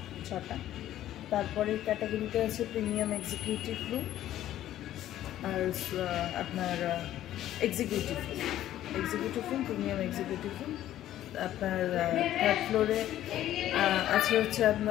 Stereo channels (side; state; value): right; quieter; 12.8 dB